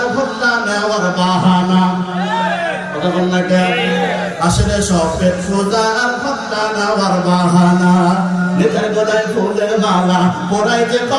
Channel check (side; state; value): both; identical; correlation 1.00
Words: ভোটটা নেওয়ার বাহানা। কথা বল না কেন? আসলে সব পেট পূজা আর ভোটটা নেওয়ার বাহানা। নেতার গলায় ফুলের মালা পড়াই যে